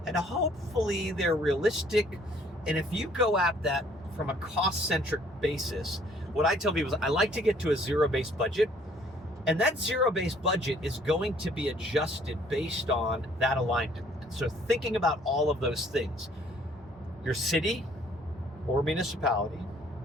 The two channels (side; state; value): both; normal; correlation 0.60